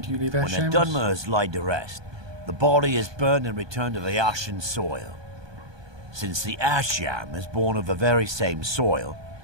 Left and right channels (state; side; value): late; left; 1.2 ms